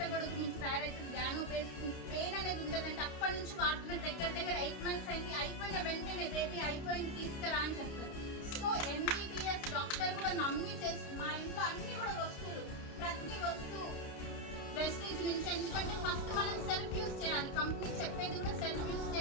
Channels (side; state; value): right; late; 29 ms